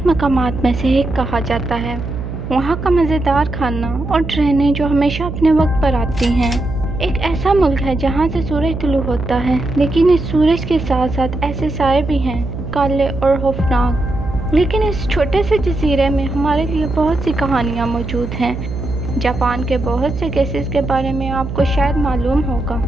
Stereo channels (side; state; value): right; noise; hum, 7 dB below the sound